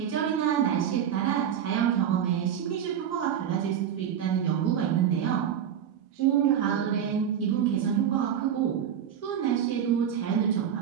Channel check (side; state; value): left; quieter; 9.1 dB